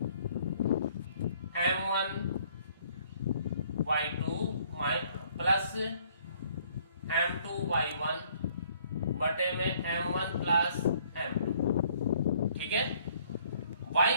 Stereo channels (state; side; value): inverted; both; correlation -0.62